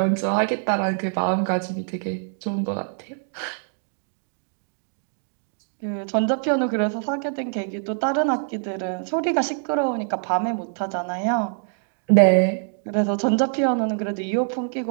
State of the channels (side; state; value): left; silent; digital silence